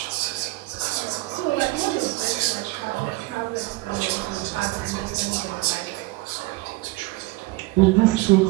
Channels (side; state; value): left; quieter; 21.2 dB